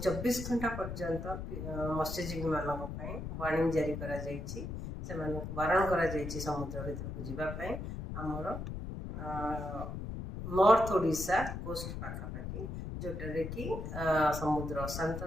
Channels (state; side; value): noise; left; rumble, 6 dB below the sound